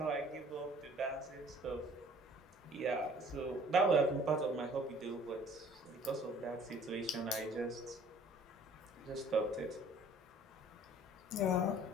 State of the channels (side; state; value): both; normal; correlation 0.53